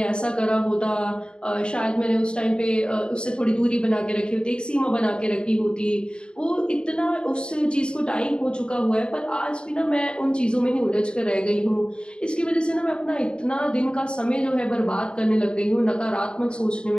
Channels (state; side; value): late; right; 0.051 ms